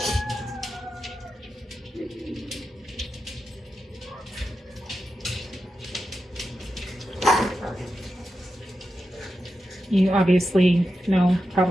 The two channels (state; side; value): normal; both; correlation 0.89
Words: You obviously know